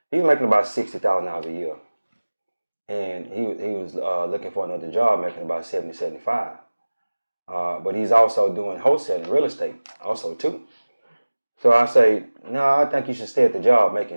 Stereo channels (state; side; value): inverted; both; correlation -1.00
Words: he was making about $60,000 a year. And he was looking for another job, making about $75,000. But he's also doing wholesaling, real estate also too. So I say, no, I think you should stay at the job making